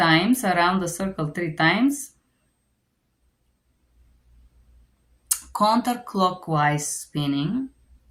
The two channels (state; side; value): identical; both; correlation 1.00